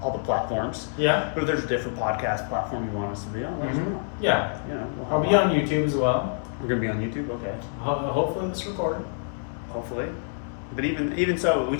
all the platforms. Yeah. But if there's a different podcast platform you want us to be on, let us know. Yeah. We'll I'll have be one. on YouTube as well. We're gonna be on YouTube, okay. Hopefully this recorded. Hopefully. But even so, we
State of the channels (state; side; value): silent; right; 61 dB below the other